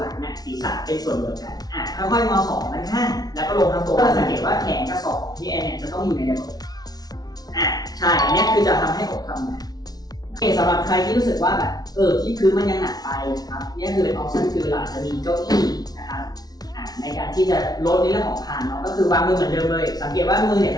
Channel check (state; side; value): late; right; 0.19 ms